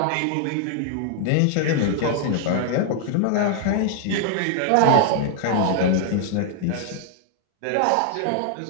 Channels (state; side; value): different; both; correlation 0.00